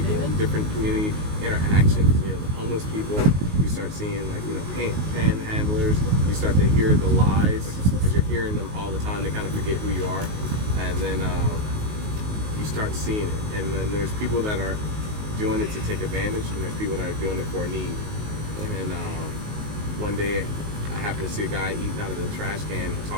different community interactions. The homeless people, you start seeing like panhandlers. You start to hear the lies because you're hearing them all the time. They kind of forget who you are, and then you start seeing it. And then there's people that are doing it to take advantage, and there's people that are doing it for a need. And one day, I happened to see a guy eating out of the trash can.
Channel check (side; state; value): left; late; 19 ms